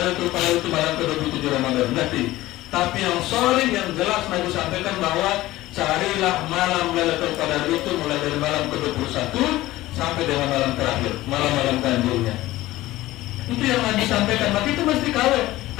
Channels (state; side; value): quieter; right; 17.0 dB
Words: Qadar itu malam ke-27 Ramadan. Nanti. Tapi yang sorry, yang jelas Nabi sampaikan bahwa carilah malam Lailatul Qadar itu mulai dari malam ke-21 sampai dengan malam terakhir, malam-malam ganjilnya. Itu yang Nabi sampaikan. Maka itu mesti kawin.